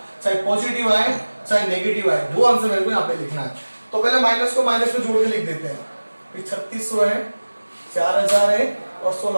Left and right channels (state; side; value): inverted; both; correlation -1.00